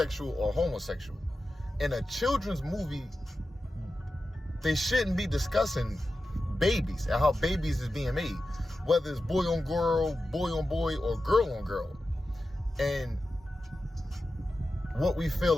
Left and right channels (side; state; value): both; normal; correlation 0.92